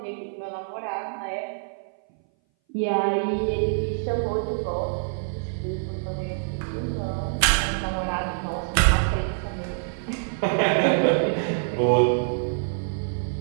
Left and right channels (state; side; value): silent; left; 59 dB below the other